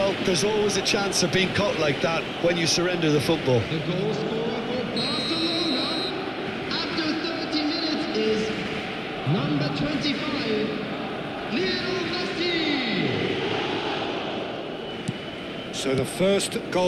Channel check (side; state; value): both; identical; correlation 1.00